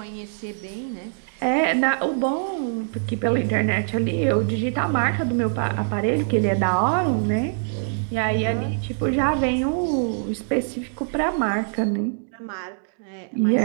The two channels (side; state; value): left; silent; digital silence